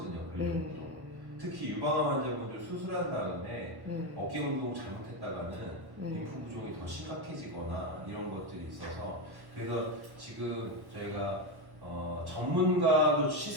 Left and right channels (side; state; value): left; late; 1.1 ms